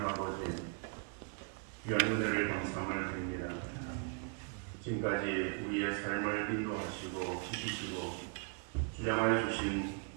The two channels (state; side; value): quieter; left; 39.4 dB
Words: 아버지, 귀한 은혜를 감사함을 드립니다. 지금까지 우리의 삶을 인도하시고 지키시고 주장하여 주신